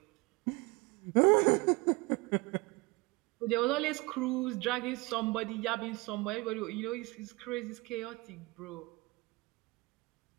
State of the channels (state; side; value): quieter; left; 24.1 dB